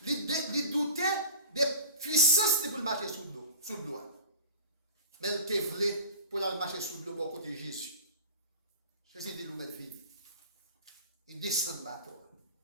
Il doutait des puissances pour marcher sous l'eau. Mais il te voulait pour marcher sous l'eau pour côté de Jésus. Jésus dit, nous mettre vie. Il descend de bateau.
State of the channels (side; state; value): both; inverted; correlation -0.40